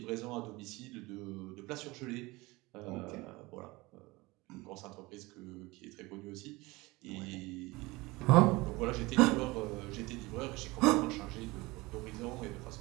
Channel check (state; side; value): quieter; left; 22.2 dB